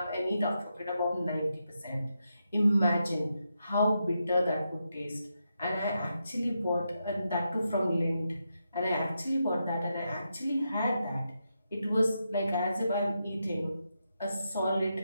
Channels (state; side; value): inverted; both; correlation -0.84